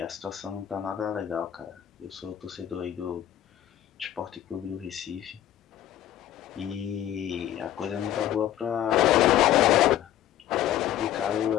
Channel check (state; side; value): quieter; right; 11.9 dB